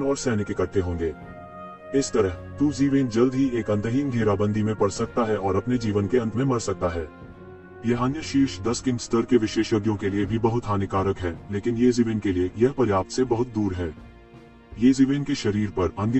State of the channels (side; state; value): both; identical; correlation 1.00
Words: और सैनिक इकट्ठे होंगे। इस तरह यज़िवेन जल्द ही एक अंतहीन घेराबंदी में पड़ सकता है और अपने जीवन के अंत में मर सकता है। यह अन्य शीर्ष 10 किंग स्तर के विशेषज्ञों के लिए भी बहुत हानिकारक है, लेकिन यज़िवेन के लिए यह पर्याप्त से बहुत दूर है। यज़िवेन के शरीर पर